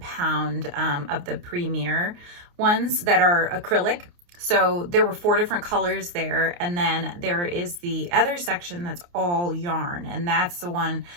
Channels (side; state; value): left; late; 29 ms